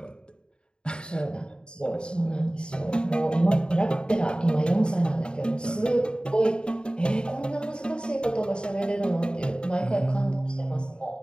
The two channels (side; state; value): right; late; 0.050 ms